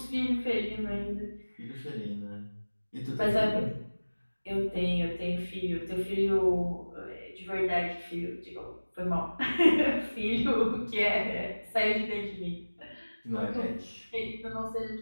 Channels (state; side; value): inverted; both; correlation -1.00